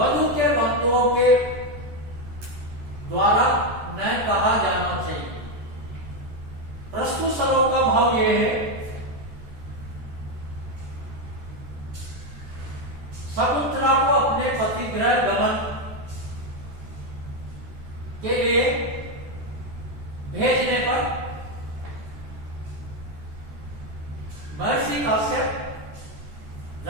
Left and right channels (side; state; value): left; late; 14 ms